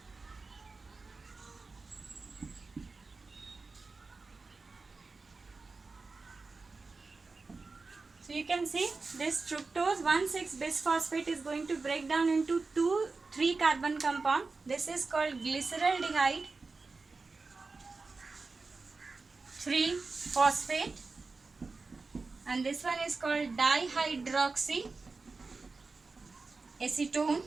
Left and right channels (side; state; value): left; quieter; 4.0 dB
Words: So you can see this fructose 1,6-bisphosphate is going to break down into 2 3 carbon compound. This is called glyceraldehyde 3-phosphate, and this one is called dihydroxy acetone